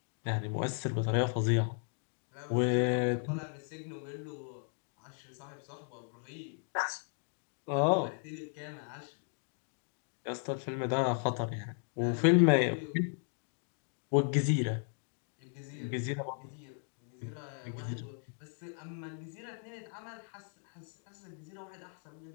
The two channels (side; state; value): right; silent; 54 dB below the other